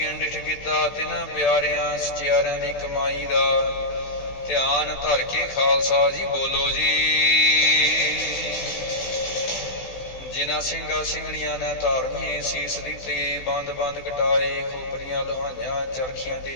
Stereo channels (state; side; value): late; right; 16 ms